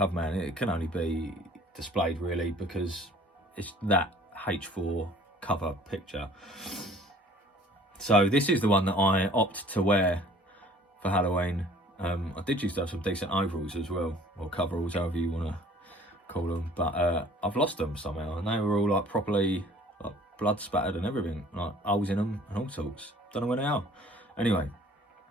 it can only be displayed really because it's that H4 cover picture. So this is the one that I opt to wear for Halloween. I did used to have some decent overalls as well, or coveralls, however you want to call them, but I've lost them somehow, and they were all like properly like blood spattered and everything, like holes in them and all sorts. Don't know where they are. Anyway,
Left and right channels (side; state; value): both; normal; correlation 0.52